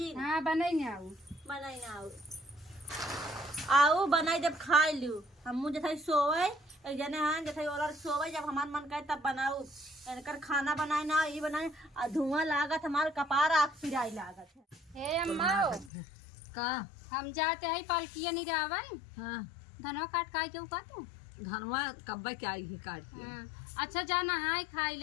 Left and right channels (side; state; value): right; drops out; at 15.9 s